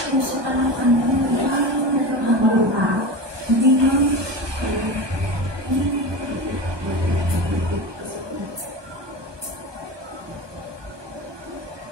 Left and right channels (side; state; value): left; late; 1.2 ms